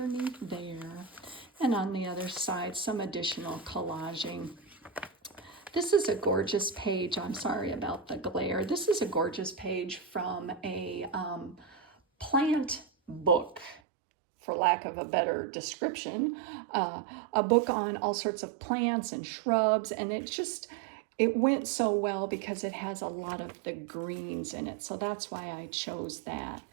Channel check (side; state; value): left; drops out; at 13.8 s